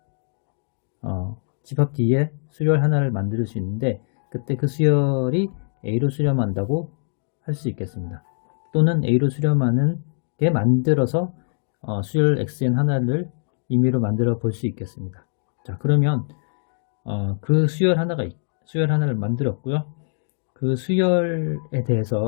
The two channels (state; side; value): silent; right; digital silence